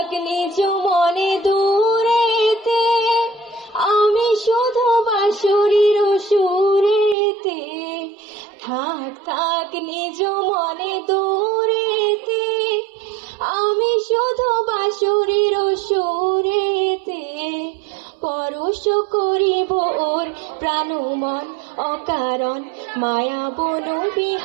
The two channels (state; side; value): drops out; left; at 7.2 s